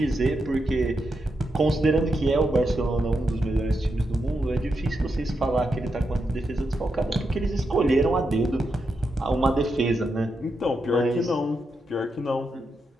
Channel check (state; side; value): normal; both; correlation 0.85